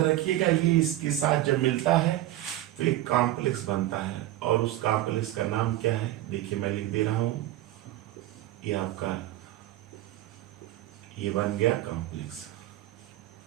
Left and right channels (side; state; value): left; quieter; 14.6 dB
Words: रखिएगा ये इसके साथ जब मिलता है तो एक कॉम्प्लेक्स बनता है, और उस कॉम्प्लेक्स का नाम क्या है, देखिए मैं लिख दे रहा हूं, ये आपका ये बन गया कॉम्प्लेक्स।